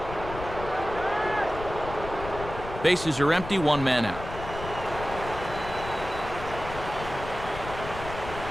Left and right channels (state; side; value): noise; left; rumble, 10 dB below the sound